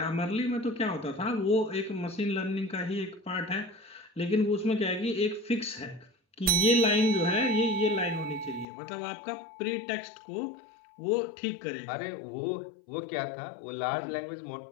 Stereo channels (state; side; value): drops out; right; at 8.7 s